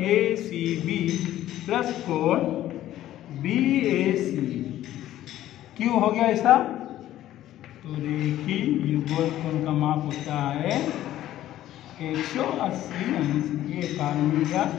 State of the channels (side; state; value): right; quieter; 13.3 dB